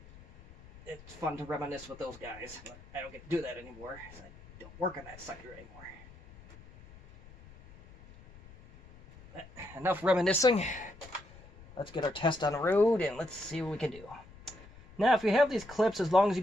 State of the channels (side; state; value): left; noise; rumble, 20 dB below the sound